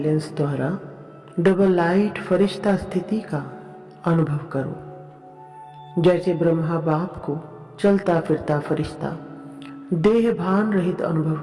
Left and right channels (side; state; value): both; identical; correlation 1.00